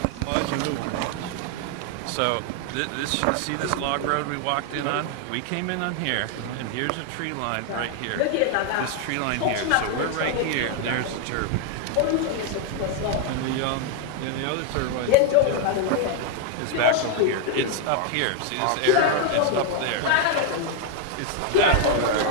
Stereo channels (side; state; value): both; different; correlation 0.00